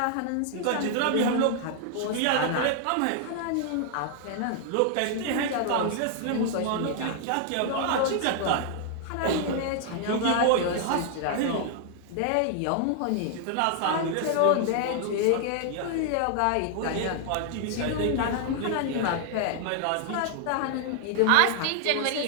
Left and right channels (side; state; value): both; different; correlation 0.00